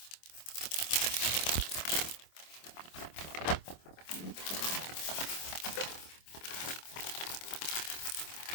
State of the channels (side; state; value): right; late; 25 ms